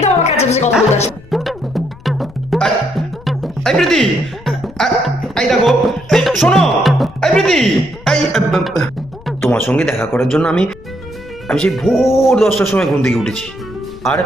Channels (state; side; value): noise; left; rumble, 20 dB below the sound